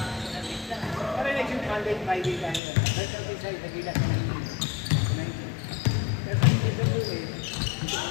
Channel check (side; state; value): right; drops out; at 2.6 s